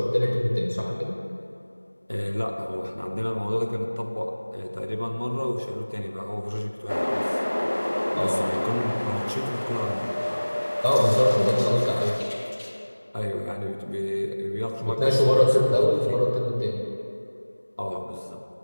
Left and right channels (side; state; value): both; inverted; correlation -1.00